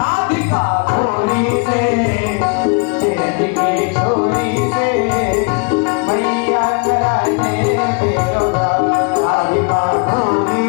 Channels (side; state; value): right; quieter; 34.6 dB